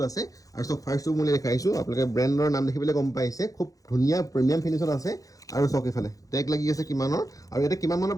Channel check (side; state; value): right; late; 0.17 ms